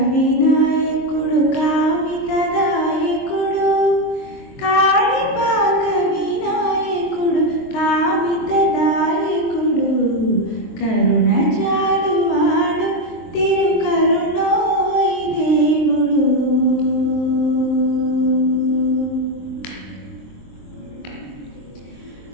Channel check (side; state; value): right; late; 23 ms